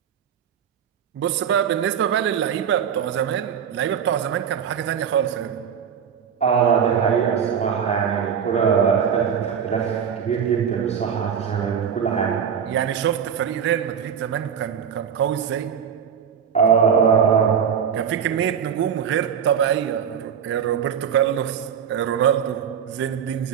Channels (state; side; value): quieter; left; 7.9 dB